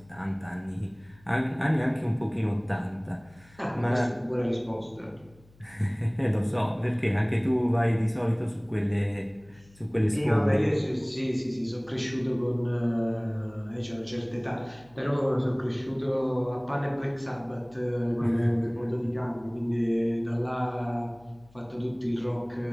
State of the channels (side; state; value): left; noise; hum, 27 dB below the sound